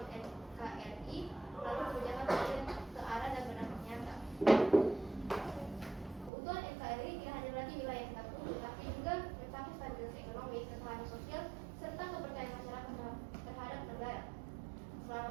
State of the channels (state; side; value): drops out; left; at 6.3 s